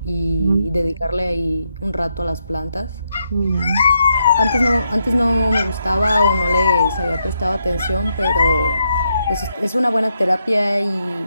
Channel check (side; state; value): both; inverted; correlation -0.80